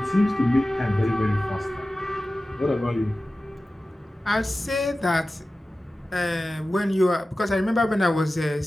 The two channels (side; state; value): both; normal; correlation 0.95